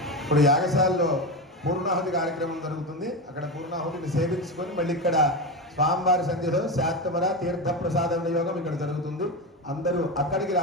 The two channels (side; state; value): both; normal; correlation 0.18